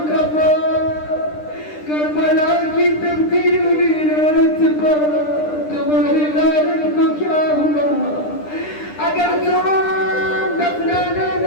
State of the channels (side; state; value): right; late; 9.9 ms